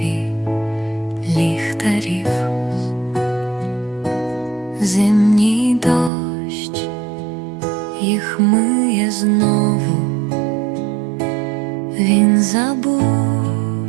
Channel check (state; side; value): drops out; left; at 6.1 s